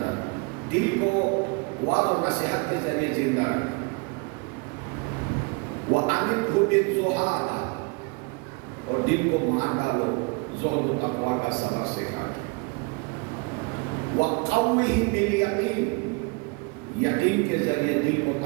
دل کو وعظ و نصیحت کے ذریعے زندہ رکھ، وَأَمِدْهُ بِالزُّهَادِ، اور دل کو مار ڈالو زہد و تقویٰ کا سبق سکھا کے، وَقَوِّهِ بِالْيَقِينِ، یقین کے ذریعے دل کو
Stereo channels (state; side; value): quieter; left; 31.1 dB